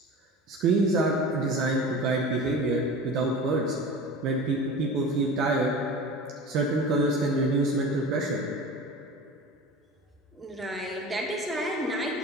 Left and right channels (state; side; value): normal; both; correlation 0.35